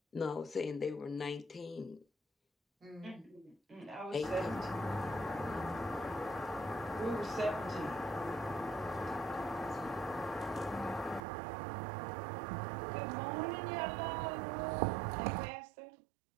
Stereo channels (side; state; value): left; drops out; at 11.2 s